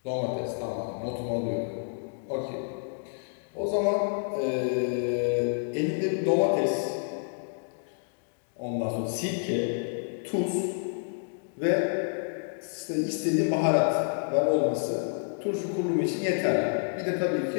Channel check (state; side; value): silent; right; digital silence